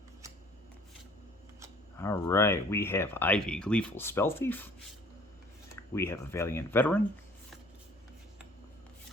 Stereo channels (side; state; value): both; normal; correlation 0.54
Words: All right, we have Ivy, Gleeful Spell Thief. We have a Valiant Veteran.